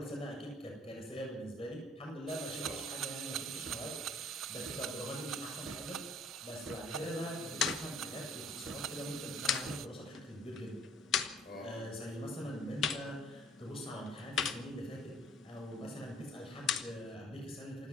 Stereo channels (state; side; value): normal; both; correlation 0.56